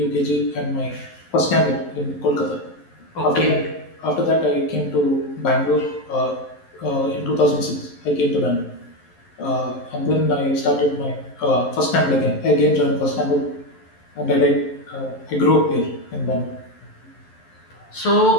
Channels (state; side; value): late; right; 11 ms